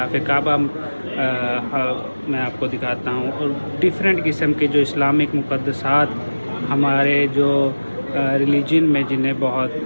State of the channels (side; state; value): both; inverted; correlation -1.00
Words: کعبہ میں آپ کو دکھاتا ہوں، اور ڈفرینٹ قسم کے جو اسلامک مقدسات ہمارے جو ریلیجن میں جنہیں بہت